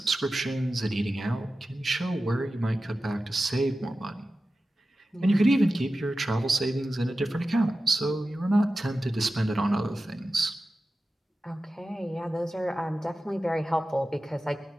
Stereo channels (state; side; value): normal; both; correlation 0.94